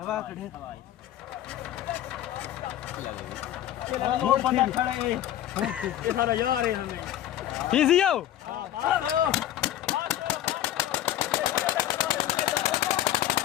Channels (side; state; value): right; quieter; 12.5 dB